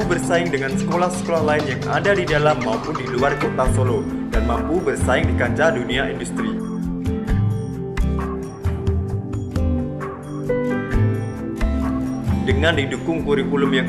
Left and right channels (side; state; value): both; identical; correlation 1.00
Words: bersaing dengan sekolah-sekolah lain yang ada di dalam maupun di luar kota Solo, dan mampu bersaing di kancah dunia industri. Dengan didukung kurikulum yang